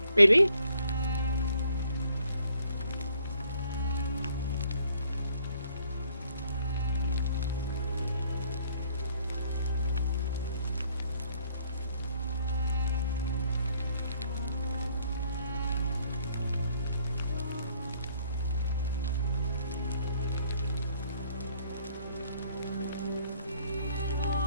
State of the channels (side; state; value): both; inverted; correlation -0.66